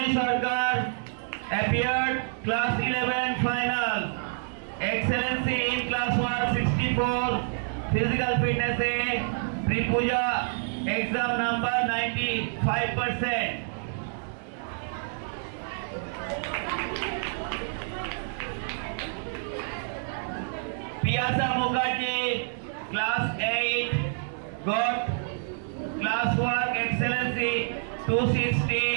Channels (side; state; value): left; silent; 59 dB below the other